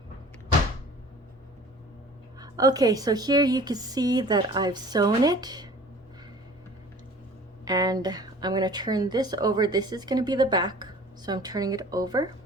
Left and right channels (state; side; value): normal; both; correlation 0.45